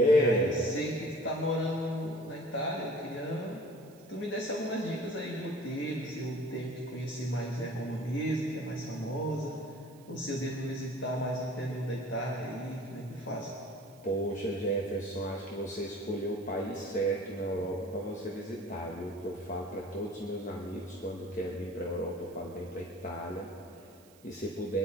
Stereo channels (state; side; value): noise; right; hiss, 26 dB below the sound